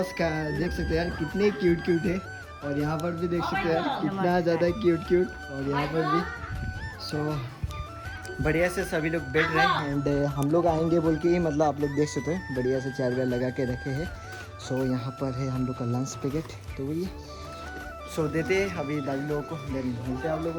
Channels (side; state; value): both; identical; correlation 1.00